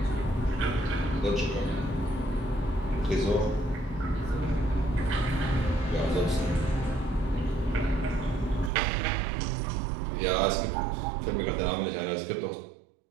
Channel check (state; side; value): drops out; left; at 8.7 s